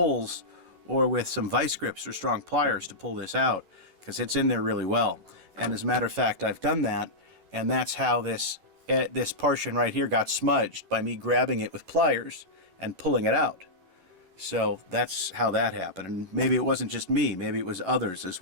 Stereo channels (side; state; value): left; late; 11 ms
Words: or with some vice grips or strong pliers to pull this out, because it's in there really well. And as a matter of fact, I've done that, and that's how this portion right here got smudged, by me grabbing it with pliers and pulling it out. So that's how that happened. And maybe it wasn't just me, maybe it was others as